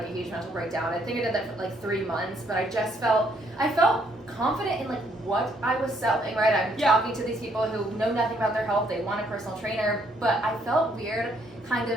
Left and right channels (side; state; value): both; normal; correlation 0.69